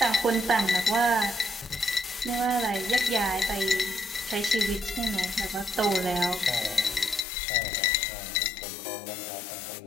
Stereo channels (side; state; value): right; drops out; at 7.2 s